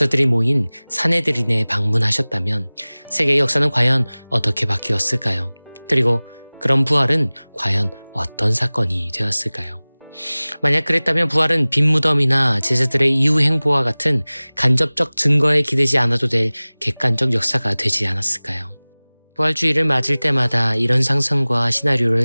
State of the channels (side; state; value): both; inverted; correlation -1.00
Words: 모인 사네드린에 방문하셨다면 세계의 역사는 과연 어떻게 바뀌었을까요? 그리고 그런 부활은 과연 어떤 사건이 되었을까요? 만약 그랬다면 부활은 빈무덤이나 제자들의 이후 행보와 같은 간접적 증거에 기대지 않아도 될 객관적 역사가 되지 않았을까요? 부활주의를 맞을 때마다 이런 상상과 시나리오를